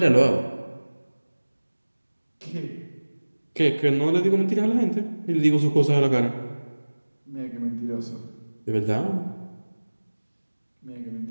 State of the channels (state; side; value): inverted; both; correlation -1.00